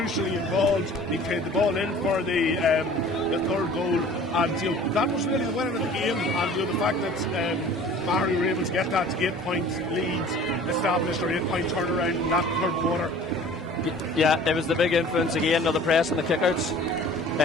involved, he played the ball in for the third goal, and that was really the winner of the game, and the fact that Maghery were able to get that 8-point lead established, or 8-point turnaround in that third quarter. Yeah, it was the big influence again of the press and the kickouts,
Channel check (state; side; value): normal; both; correlation 0.47